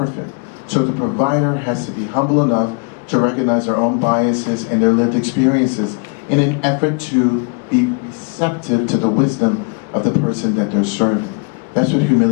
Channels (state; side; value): quieter; right; 36.0 dB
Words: So the provider has to be humble enough to recognize their own biases and their lived experiences in an effort to be receptive to the wisdom of the person that they're serving. That's what